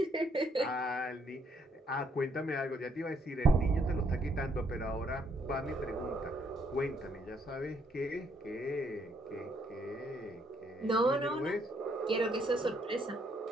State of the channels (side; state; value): both; normal; correlation 0.70